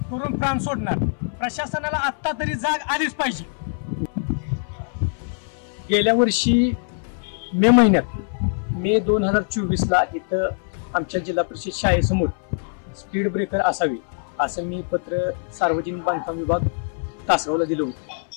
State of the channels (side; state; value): right; silent; 59 dB below the other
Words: करून प्राण सोडणार. प्रशासनाला आत्ता तरी जाग आलीच पाहिजे. गेल्या वर्षी मे 2024ला इथं आमच्या जिल्हा परिषद शाळेसमोर स्पीड ब्रेकर असावी असं मी पत्र सार्वजनिक बांधकाम विभाग तासगावला दिलं